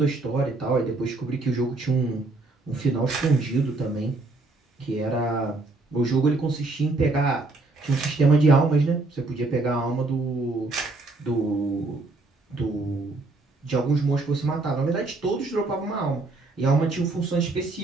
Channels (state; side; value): quieter; left; 3.3 dB